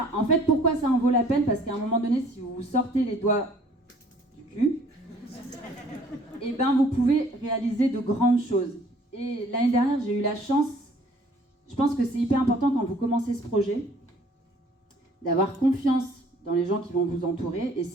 en fait, pourquoi ça en vaut la peine? Parce qu'à un moment donné, si vous vous sortez les doigts du cul, vous pouvez réaliser de grandes choses. Et l'année dernière, j'ai eu la chance, je pense que c'est hyper important quand vous commencez ce projet, d'avoir confiance dans les gens qui vont vous entourer. Et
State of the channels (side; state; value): both; normal; correlation 0.56